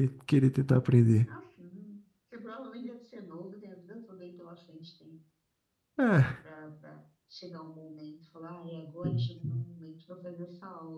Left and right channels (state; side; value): identical; both; correlation 1.00